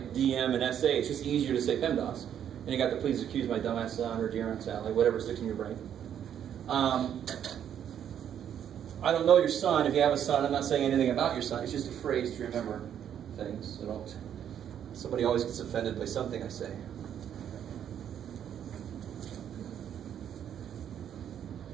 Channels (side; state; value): left; quieter; 9.5 dB